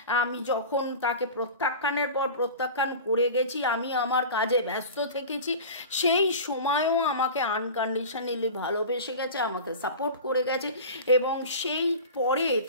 আমি যখন তাকে প্রত্যাখ্যানের পর প্রত্যাখ্যান করে গেছি, আমি আমার কাজে ব্যস্ত থেকেছি, সেই সময়ও আমাকে আনকন্ডিশনালি ভালোবেসে গেছে, আমাকে সাপোর্ট করে গেছে, এবং সেই পরে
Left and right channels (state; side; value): inverted; both; correlation -0.34